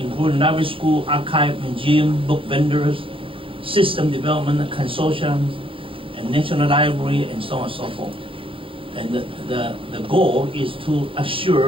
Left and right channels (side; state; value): left; late; 0.26 ms